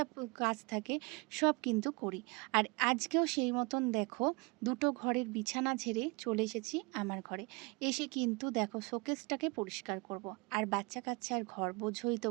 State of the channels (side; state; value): left; quieter; 28.6 dB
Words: কাজ থাকে সব কিন্তু করি। আর আজকেও সেই মতন দেখো, 2টো ঘরের বিছানা ঝেড়ে চলে এসেছি আমার ঘরে। এসে কিন্তু দেখো শোকেসটাকে পরিষ্কার করব। আর বাচ্চা কাচ্চার ঘর বোঝোই তো